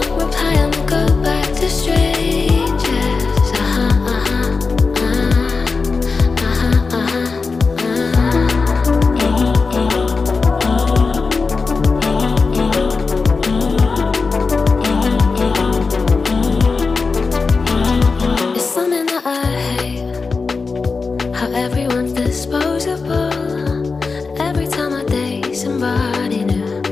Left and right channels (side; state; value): right; quieter; 4.4 dB